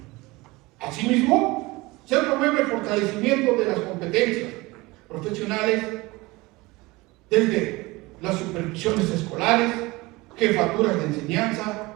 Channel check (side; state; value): left; quieter; 22.1 dB